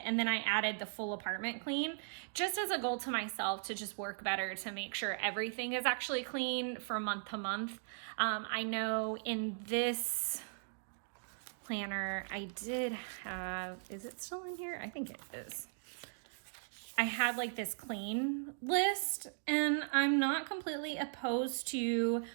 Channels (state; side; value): silent; left; digital silence